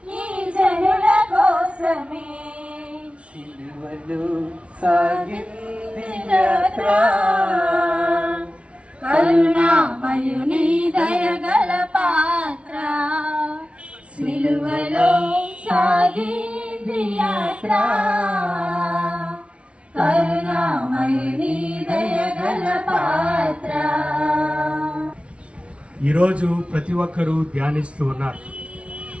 ఈ జనుల కోసమే సిలువలో సాగింది యాత్ర కరుణామయుని దయగల పాత్ర సిలువలో సాగింది యాత్ర కరుణామయుని దయగల పాత్ర. ఈరోజు ప్రతి ఒక్కరూ ధ్యానిస్తూ ఉన్నారు.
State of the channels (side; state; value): left; late; 0.061 ms